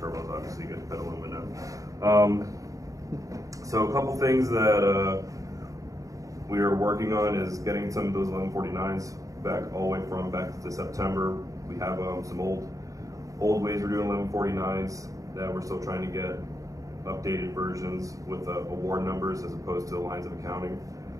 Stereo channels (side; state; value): left; late; 0.16 ms